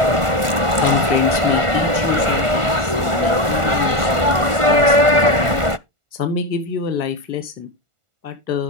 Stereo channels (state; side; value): late; left; 1.5 ms